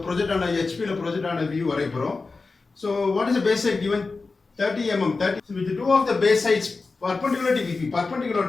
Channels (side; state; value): right; quieter; 4.0 dB